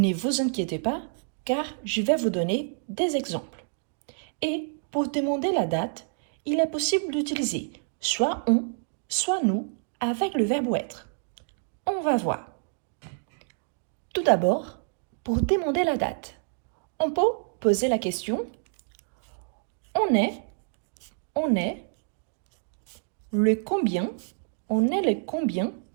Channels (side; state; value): left; silent; digital silence